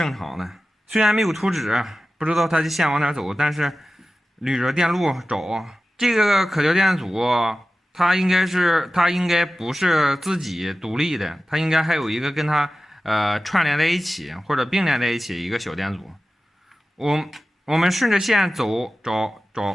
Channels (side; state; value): both; normal; correlation 0.95